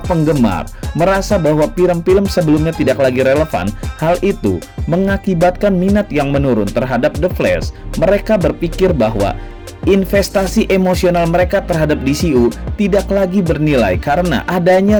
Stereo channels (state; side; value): identical; both; correlation 1.00